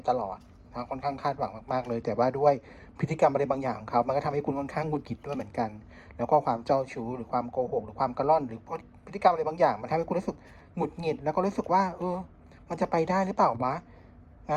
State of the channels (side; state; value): both; identical; correlation 1.00